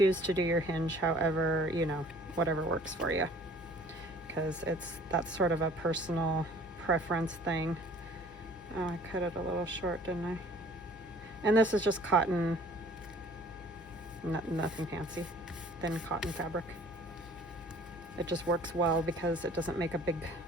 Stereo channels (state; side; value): normal; both; correlation 0.52